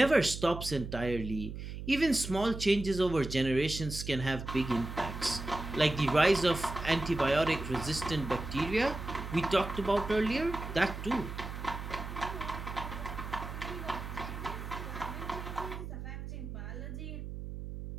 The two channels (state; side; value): noise; right; hum, 8 dB below the sound